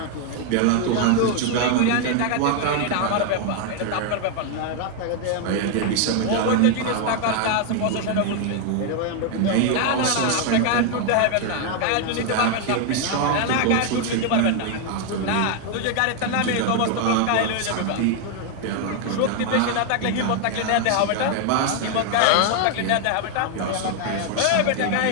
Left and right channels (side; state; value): both; different; correlation 0.01